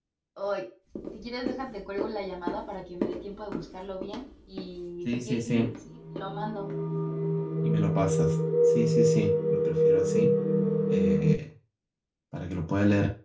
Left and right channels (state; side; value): identical; both; correlation 1.00